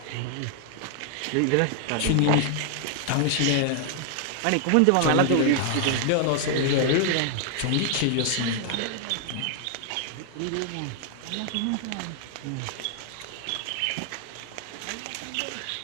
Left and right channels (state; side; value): different; both; correlation 0.00